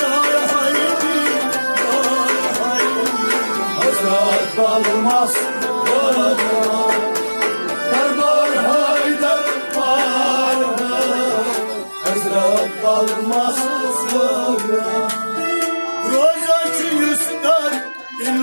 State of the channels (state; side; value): inverted; both; correlation -1.00